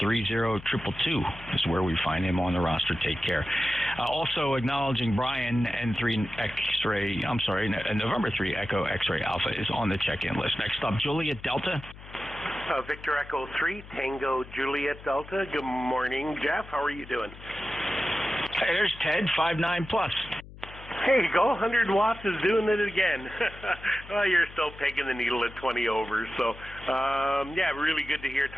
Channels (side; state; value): left; noise; hum, 17 dB below the sound